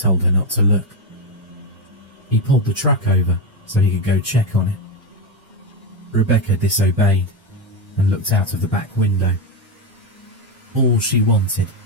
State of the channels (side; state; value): both; normal; correlation 0.10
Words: her not to look. He pulled the truck over so he could go check on it. Rebecca disobeyed and looked out of the back window. All she wanted